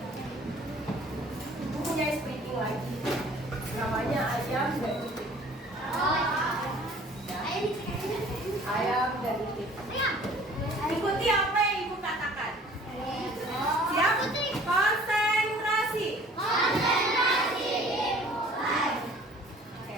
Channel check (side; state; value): both; normal; correlation 0.51